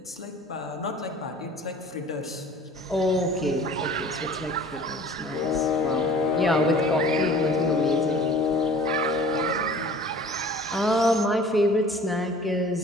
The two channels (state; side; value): normal; both; correlation 0.47